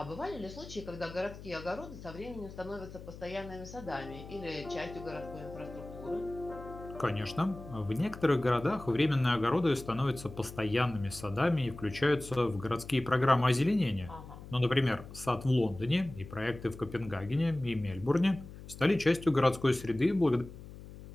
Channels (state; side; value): noise; left; hum, 15 dB below the sound